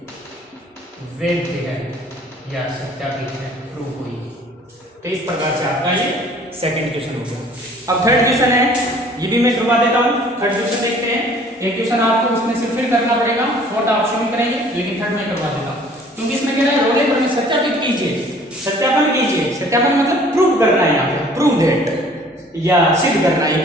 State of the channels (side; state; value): both; normal; correlation 0.53